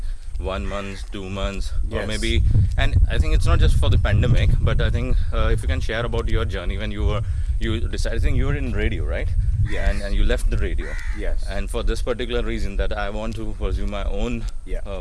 1 month, 2 months, or maybe, and I think it's not just for the pandemic, but I think if you can share about your journey when you decided, I think you were in radio, right? And you left the radio. And for this particular reason, that I want to pursue my own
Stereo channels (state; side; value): identical; both; correlation 1.00